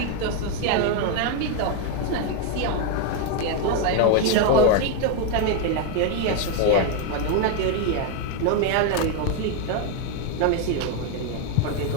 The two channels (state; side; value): different; both; correlation 0.01